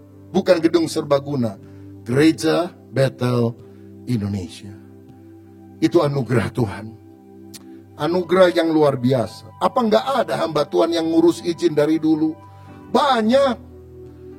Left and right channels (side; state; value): both; identical; correlation 1.00